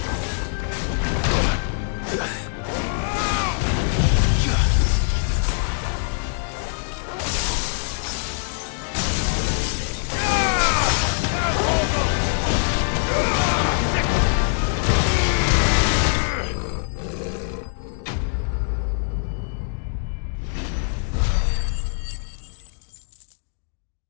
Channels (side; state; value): right; silent; digital silence